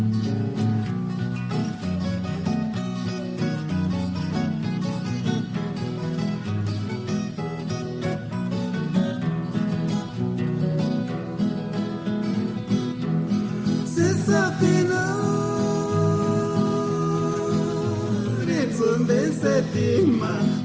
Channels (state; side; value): identical; both; correlation 1.00